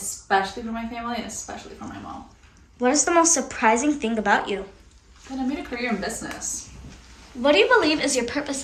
for my family and especially for my mom. What is the most surprising thing about you? And I made a career in business. What do you believe is your purpose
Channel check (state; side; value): identical; both; correlation 1.00